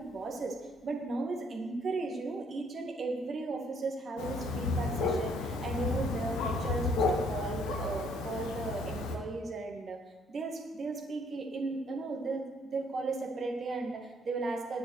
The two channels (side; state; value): both; normal; correlation 0.65